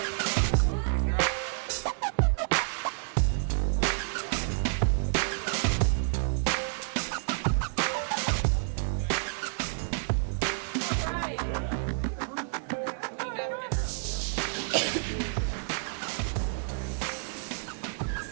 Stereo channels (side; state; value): left; silent; digital silence